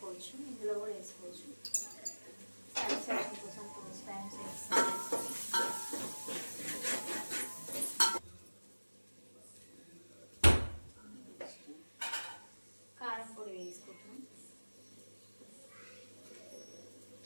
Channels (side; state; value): both; inverted; correlation -1.00